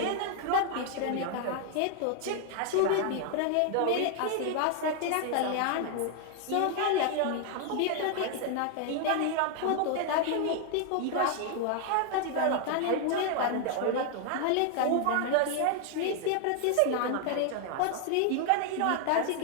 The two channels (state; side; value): different; both; correlation 0.00